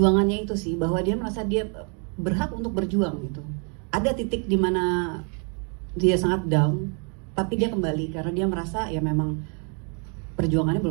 itu sih, bahwa dia merasa dia berhak untuk berjuang gitu. Ada titik di mana dia sangat down, tapi dia kembali karena dia merasa ya memang perjuangannya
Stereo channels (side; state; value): left; quieter; 38.7 dB